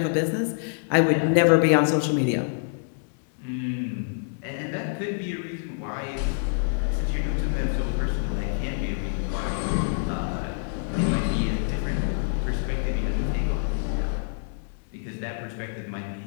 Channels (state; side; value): silent; right; digital silence